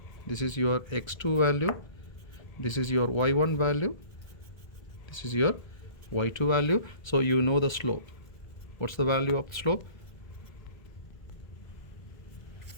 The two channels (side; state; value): right; late; 1.3 ms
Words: this is your x2 value, this is your y1 value, this is your y2 value. So you know the slope. What's the value of the slope?